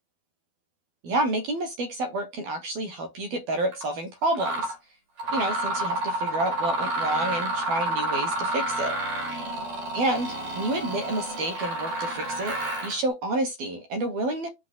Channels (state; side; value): late; left; 12 ms